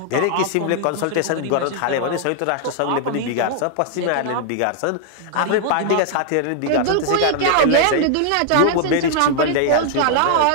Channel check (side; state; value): both; different; correlation 0.00